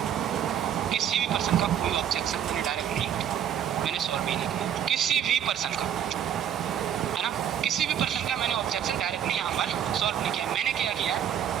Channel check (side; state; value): left; quieter; 9.5 dB